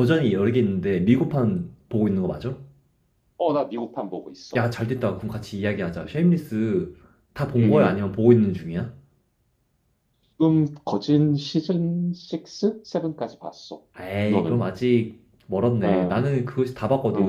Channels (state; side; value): identical; both; correlation 1.00